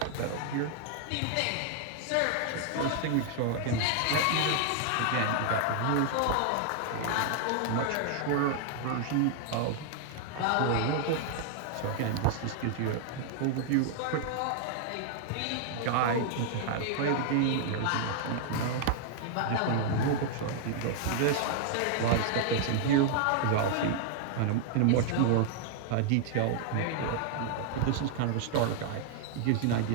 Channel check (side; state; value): both; different; correlation 0.00